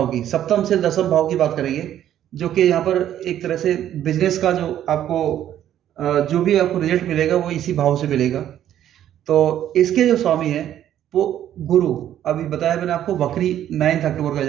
की, सप्तम से दशम भाव की बात करेंगे, जो कि यहाँ पर एक तरह से बिजनेस का जो आपको जो भी आपको रिजल्ट मिलेगा वो इसी भाव से मिलेगा। तो इसके जो स्वामी है वो गुरु, अभी बताया मैंने आपको, वक्री 9 अक्टूबर का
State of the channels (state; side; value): quieter; left; 11.3 dB